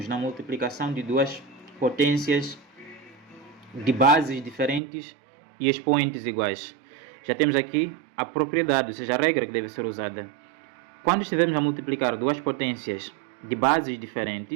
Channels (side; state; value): left; drops out; at 4.8 s